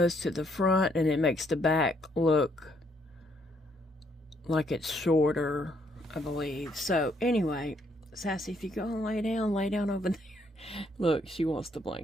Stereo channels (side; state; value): both; normal; correlation 0.70